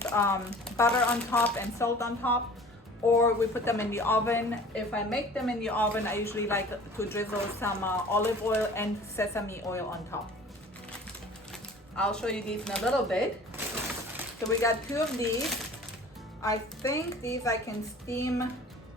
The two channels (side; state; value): both; normal; correlation 0.45